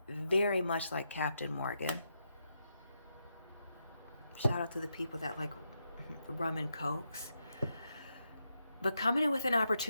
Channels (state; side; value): inverted; both; correlation -0.83